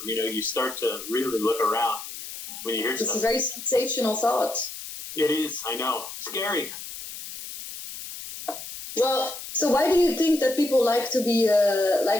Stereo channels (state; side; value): noise; left; hiss, 11 dB below the sound